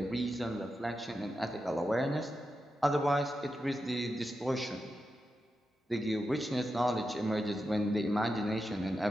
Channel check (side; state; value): both; normal; correlation 0.88